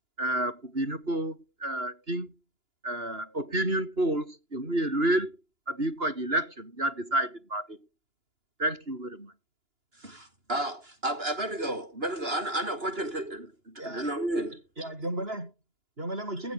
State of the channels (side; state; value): left; late; 2.9 ms